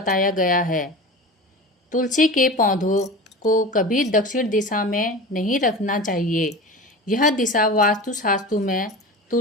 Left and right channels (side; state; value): both; normal; correlation 0.32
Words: गया है। तुलसी के पौधों को कभी दक्षिण दिशा में नहीं रखना चाहिए। यह दिशा वास्तुशास्त्र में